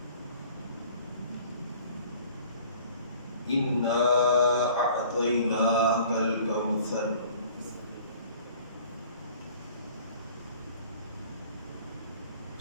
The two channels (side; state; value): both; inverted; correlation -0.51